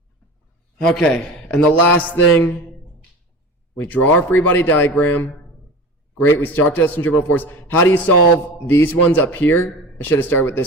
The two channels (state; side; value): normal; both; correlation 0.34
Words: Okay, and the last thing, we draw our free body diagram. Great, we start to centripetal force. How do you solve these ones up here? I should have started with